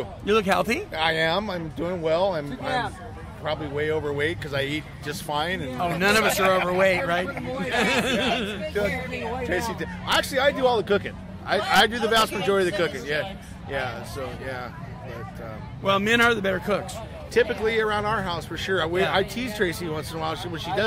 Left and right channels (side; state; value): both; identical; correlation 1.00